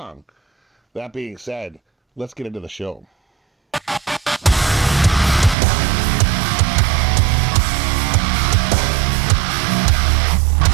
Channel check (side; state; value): left; drops out; at 5.6 s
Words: That being said, let's get into the show.